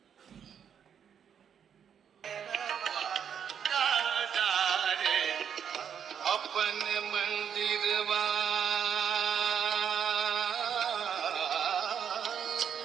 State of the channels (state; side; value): quieter; left; 8.1 dB